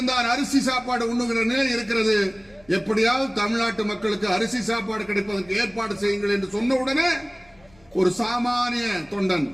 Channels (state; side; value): noise; left; rumble, 30 dB below the sound